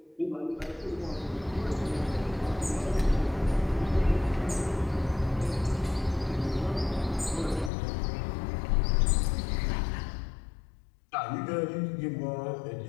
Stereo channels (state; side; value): drops out; right; at 7.7 s